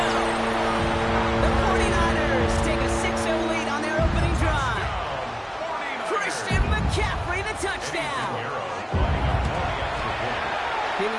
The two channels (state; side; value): identical; both; correlation 1.00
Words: The 49ers take a 6-0 lead on their opening drive. Christian McCaffrey, the touchdown.